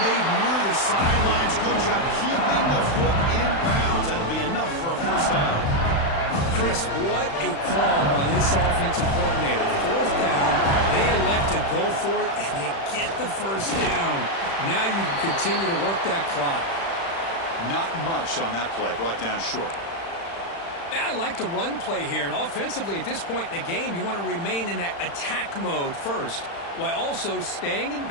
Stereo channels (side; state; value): right; late; 35 ms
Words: near the sidelines. Good job keeping the foot in bounds. That'll be enough for a 1st down. Chris, what a call by this offensive coordinator. 4th down, they elect to go for it, and they get the 1st down. Now you can continue to work that clock. Not much on that play, brought down short. Yeah, I like the run play here, and offensively at this point in the game, you want to remain in that attack mode first, while also staying in